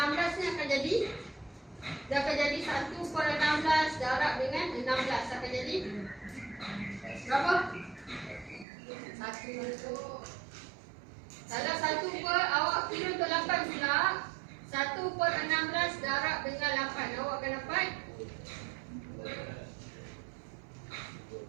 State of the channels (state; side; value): drops out; left; at 8.7 s